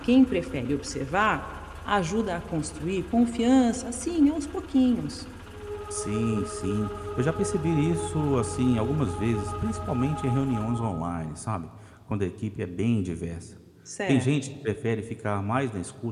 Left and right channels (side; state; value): both; identical; correlation 1.00